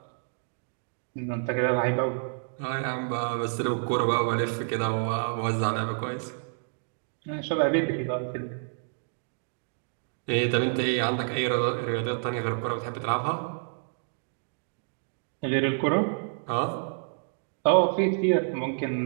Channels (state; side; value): silent; left; digital silence